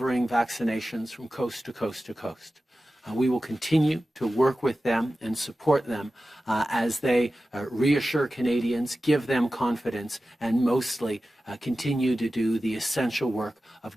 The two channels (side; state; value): both; normal; correlation 0.94